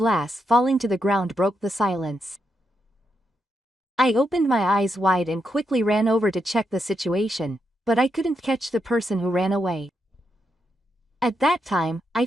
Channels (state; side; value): normal; both; correlation 0.83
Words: falling to the ground broke the silence. I opened my eyes wide and quickly ran over to check the situation, but I couldn't catch the person who ran away. At that time, I